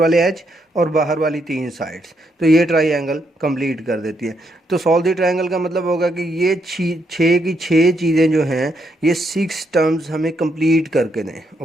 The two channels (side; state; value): both; normal; correlation 0.77